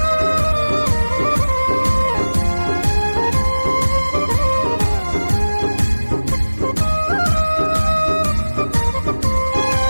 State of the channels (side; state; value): both; inverted; correlation -1.00